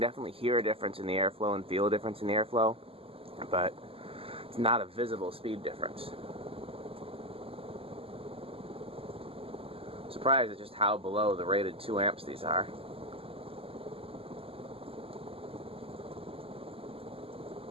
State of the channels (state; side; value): late; left; 0.27 ms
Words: hear a difference in the airflow and feel a difference in the airflow, but it's not a visible speed difference. Surprised at just how below the rated 2 amps these are.